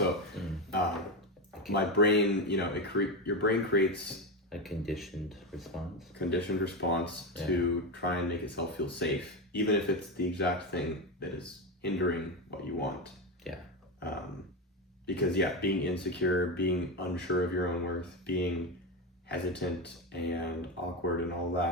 my brain, you know, your brain creates a conditioned response to try and make itself feel safe, even if it's the exact thing that is hindering what you want. Yeah. Because being insecure, being unsure of your own worth, being hesitant and awkward and all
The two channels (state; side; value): normal; both; correlation 0.15